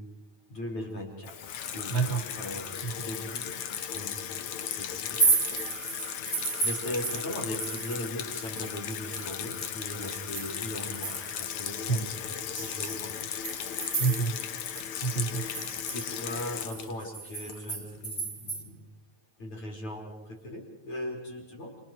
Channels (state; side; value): late; right; 9.1 ms